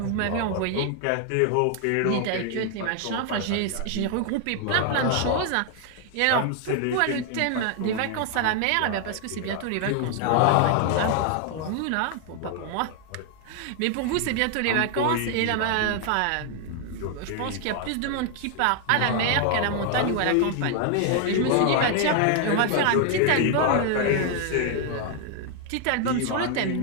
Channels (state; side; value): different; both; correlation 0.00